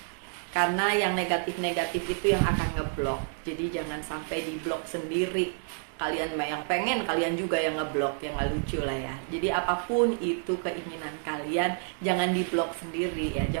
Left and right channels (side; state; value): left; silent; 58 dB below the other